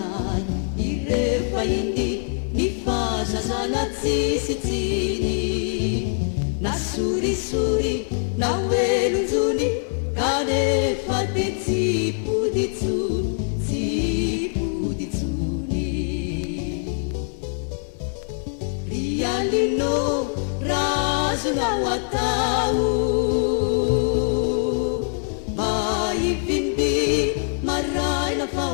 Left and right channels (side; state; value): right; silent; 63 dB below the other